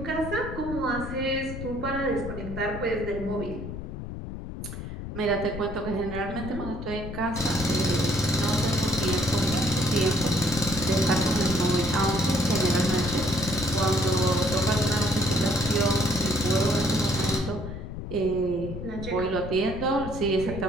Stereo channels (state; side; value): noise; left; rumble, 8 dB below the sound